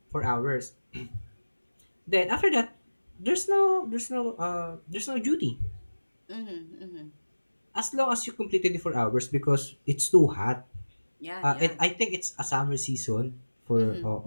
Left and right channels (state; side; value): inverted; both; correlation -1.00